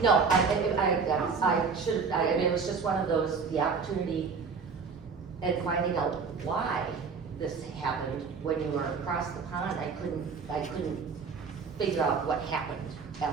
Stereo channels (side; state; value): left; quieter; 5.3 dB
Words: No, I should, I mean, it was just one of those, the opportunity and finding out why this happened. When you were across the pond, I couldn't figure out what happened